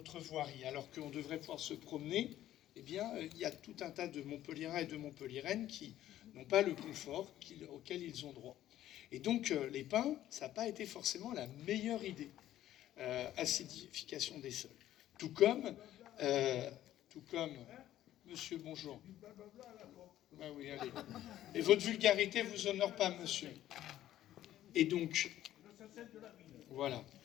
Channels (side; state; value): right; quieter; 13.0 dB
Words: voirie. Alors qu'on devrait pouvoir se promener, eh bien, il y a tout un tas de Montpelliérains et de Montpelliéraines qui n'ont pas le confort auquel ils ont droit. Et donc, les pins, ça n'a pas été forcément la meilleure idée. Acidification des sols. Tout comme, monsieur, bonjour. Ah oui, allez. Et votre vulgarité vous honore pas, monsieur. Et donc, voilà,